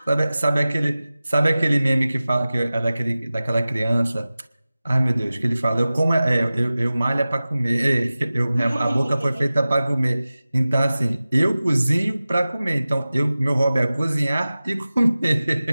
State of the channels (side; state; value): both; inverted; correlation -0.97